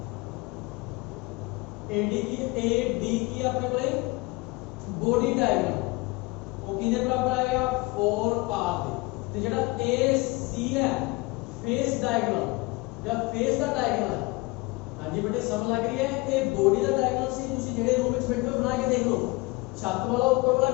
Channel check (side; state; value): right; quieter; 24.4 dB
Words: ad की अपने कोले बॉडी डायगोनल वो किदे बराबर आएगा 4r दे। ਤੇ ਜਿਹੜਾ AC ਹੈ ਫੇਸ ਡਾਇਗੋਨਲ ਜਾਂ ਫੇਸ ਦਾ ਡਾਇਗੋਨਲ, ਹਾਂਜੀ ਬੇਟੇ ਸਮਝ ਲੱਗ ਰਹੀ ਹੈ, ਇਹ ਬੋਡੀ ਦਾ ਡਾਇਗੋਨਲ ਸੀ। ਤੁਸੀਂ ਜਿਹੜੇ ਰੂਮ ਵਿੱਚ ਬੈਠੇ ਹੋ ਬਣਾ ਕੇ ਦੇਖ ਲਓ, ਛੱਤ ਵਾਲਾ ਉੱਪਰ ਵਾਲਾ